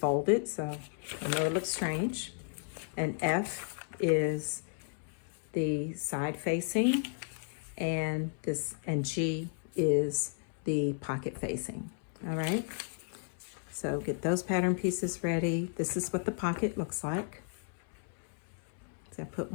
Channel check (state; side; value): silent; right; 55 dB below the other